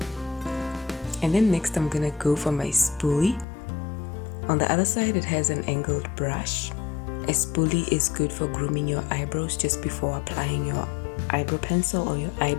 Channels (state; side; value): drops out; right; at 3.5 s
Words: And then next I'm gonna go for my spoolie. On the other side it has an angled brush. A spoolie is good for grooming your eyebrows just before applying your eyebrow pencil or your